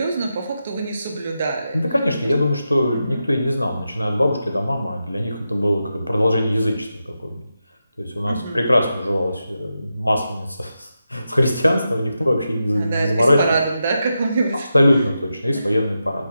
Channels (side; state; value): both; inverted; correlation -0.88